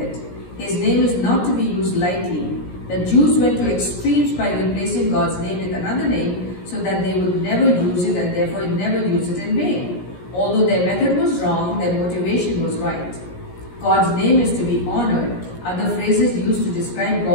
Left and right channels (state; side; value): late; right; 17 ms